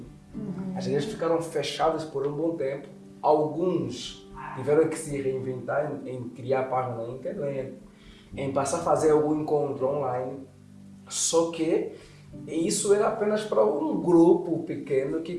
As igrejas ficaram fechadas por um bom tempo. Alguns tiveram que se reinventar em criar página na internet, em passar a fazer algum encontro online. Só que isso era apenas para um grupo pequeno que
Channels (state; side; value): identical; both; correlation 1.00